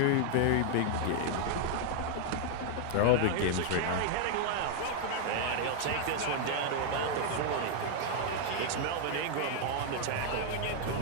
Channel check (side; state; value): both; different; correlation 0.00